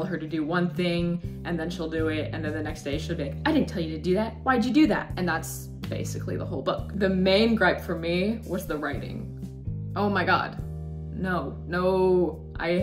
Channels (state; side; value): identical; both; correlation 1.00